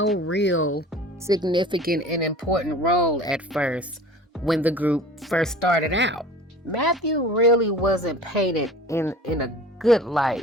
real significant and important role at first when the group first started out. Mathew really wasn't painted in a good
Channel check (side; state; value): both; normal; correlation 0.42